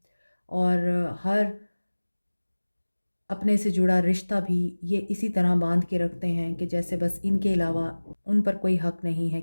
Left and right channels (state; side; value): inverted; both; correlation -1.00